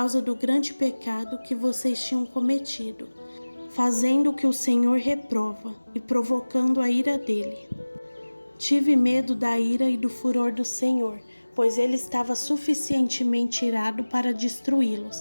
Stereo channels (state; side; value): inverted; both; correlation -1.00